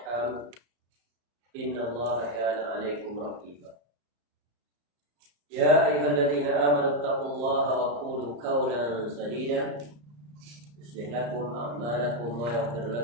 innallaha kana 'alaikum raqiba. يا أيها الذين آمنوا اتقوا الله وقولوا قولا سديدا يصلح لكم أعمالكم ويغفر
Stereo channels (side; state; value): left; late; 34 ms